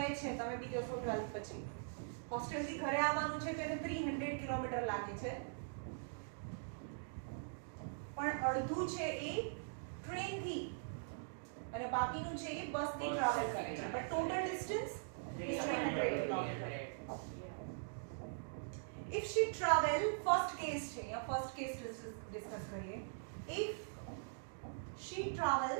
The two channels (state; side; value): silent; left; digital silence